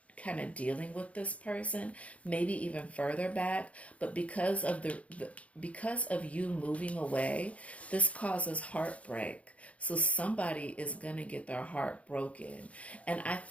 kind of dealing with this person, maybe even further back. But because of because of you moving away, this causes heartbreak. So somebody is going to get their heart broken. And I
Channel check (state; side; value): late; right; 0.065 ms